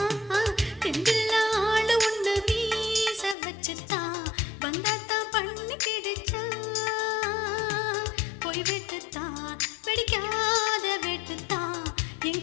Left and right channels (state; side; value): drops out; right; at 3.4 s